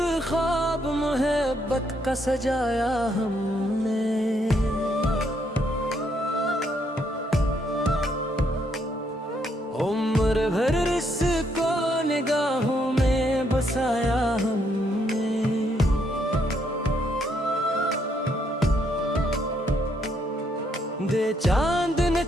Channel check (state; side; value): normal; both; correlation 0.73